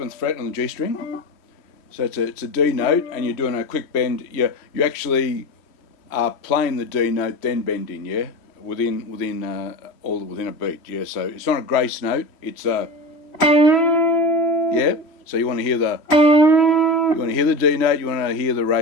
fret on the G string. So it's a D note, and you're doing a quick bend. You actually are playing the D note, then bending, yeah, within a beat, yeah. So it's not a grace note. It's a yeah. So you want to hear the D note. You want to hear the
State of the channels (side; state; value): right; late; 3.1 ms